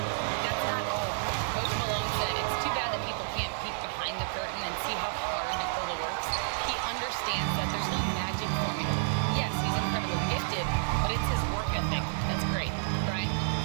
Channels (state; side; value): silent; left; digital silence